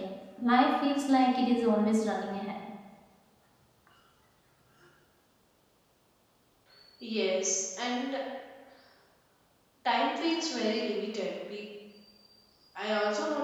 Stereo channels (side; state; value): both; identical; correlation 1.00